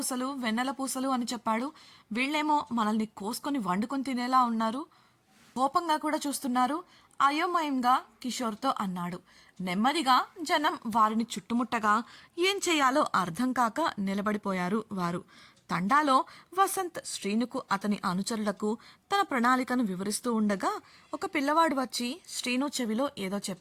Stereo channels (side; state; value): both; identical; correlation 1.00